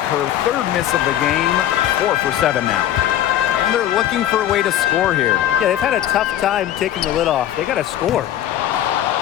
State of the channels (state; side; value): quieter; right; 11.9 dB